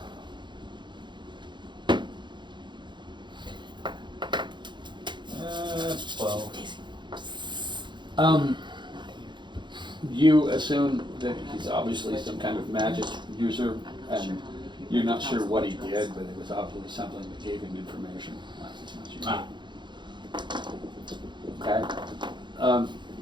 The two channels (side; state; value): left; late; 0.22 ms